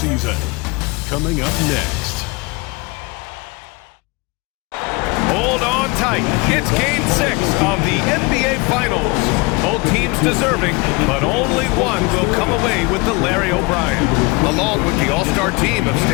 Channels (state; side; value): quieter; right; 26.7 dB